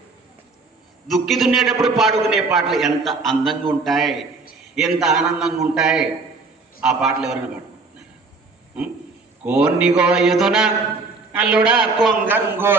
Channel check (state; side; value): quieter; left; 3.9 dB